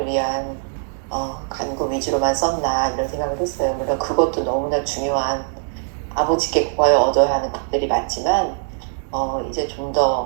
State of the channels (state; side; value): silent; left; digital silence